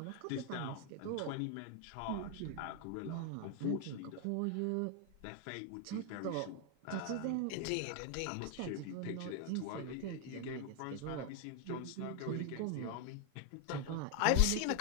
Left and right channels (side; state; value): both; different; correlation 0.00